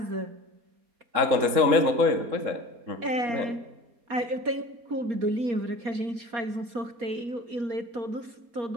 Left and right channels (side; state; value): left; late; 4.3 ms